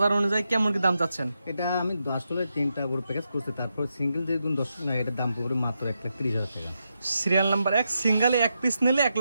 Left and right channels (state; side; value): inverted; both; correlation -0.85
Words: অনুযায়ী কেমন কি দাম চাচ্ছেন? এটা আমি আসলে 3টা গরু প্যাকেজ করছি, তারপর সিঙ্গেল যে দর্শক না এটার দাম পড়বে মাত্র 1,30,000 টাকা। সিরিয়াল নাম্বার 1 সিঙ্গেলে 1 পিস নিলে